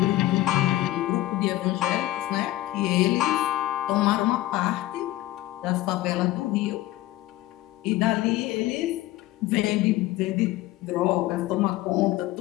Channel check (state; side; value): quieter; right; 16.2 dB